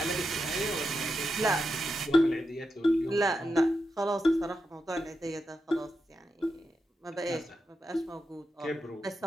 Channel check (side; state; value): both; normal; correlation 0.87